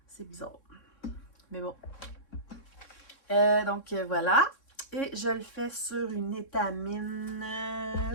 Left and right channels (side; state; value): right; late; 3.6 ms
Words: C'est bizarre. Mais bon. Donc, voilà. Et je le fais sur une étamine.